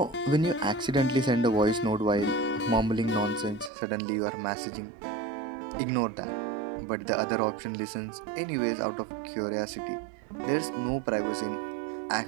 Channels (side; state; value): left; drops out; at 3.7 s